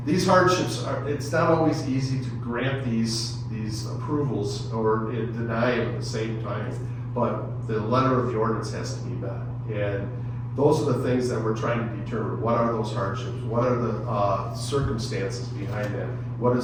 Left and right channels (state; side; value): identical; both; correlation 1.00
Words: these hardships it's not always easy to grant these approvals or deny them at the same time, but the letter of the ordinance has to be met. And those are the things that we're trying to determine. What are those hardships? What are the circumstances behind that? What